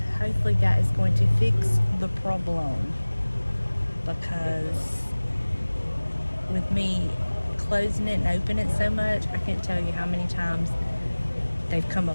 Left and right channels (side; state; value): both; inverted; correlation -1.00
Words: hopefully that is going to fix the problem, because with me closing it and opening it so much, I can't tell you how many times they've come